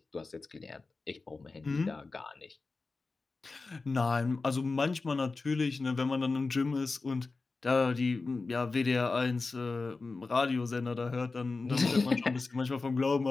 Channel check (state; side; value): quieter; right; 3.9 dB